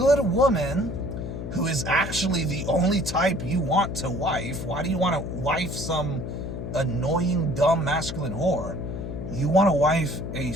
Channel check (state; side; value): noise; left; hum, 6 dB below the sound